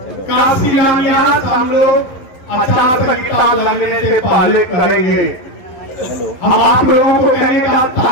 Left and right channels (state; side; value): late; right; 11 ms